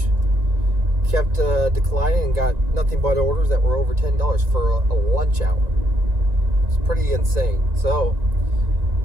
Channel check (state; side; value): late; left; 1.9 ms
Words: Kept declining and got nothing but orders that were over $10 for a lunch hour. It's pretty insane. So